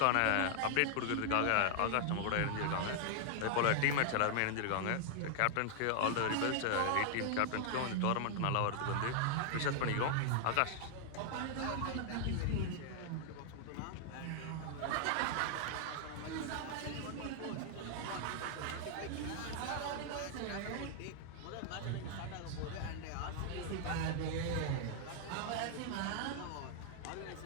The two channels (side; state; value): both; different; correlation 0.00